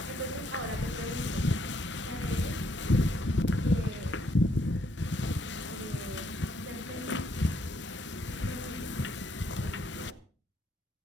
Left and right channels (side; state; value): both; normal; correlation 0.72